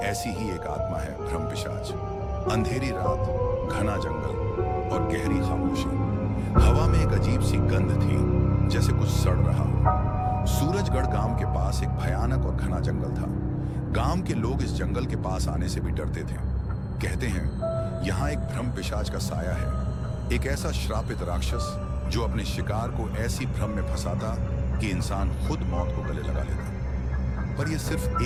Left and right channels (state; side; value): identical; both; correlation 1.00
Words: ऐसी ही एक आत्मा है भ्रम पिशाच। अंधेरी रात, घना जंगल और गहरी खामोशी। हवा में एक अजीब सी गंध थी, जैसे कुछ सड़ रहा हो। सूरजगढ़ गांव के पास एक भयानक और घना जंगल था। गांव के लोग इस जंगल के पास आने से भी डरते थे। कहते हैं यहाँ एक भ्रम पिशाच का साया है, एक ऐसा श्रापित राक्षस जो अपने शिकार को ऐसी भ्रम में फंसाता कि इंसान खुद मौत को गले लगा लेता। पर यह सिर्फ